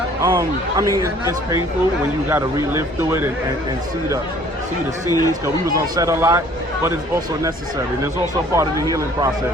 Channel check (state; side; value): normal; both; correlation 0.55